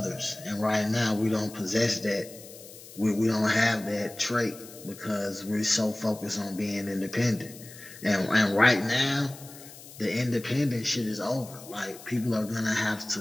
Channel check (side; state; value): left; noise; hiss, 17 dB below the sound